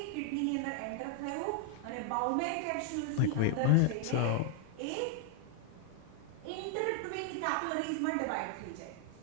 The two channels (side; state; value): both; different; correlation 0.00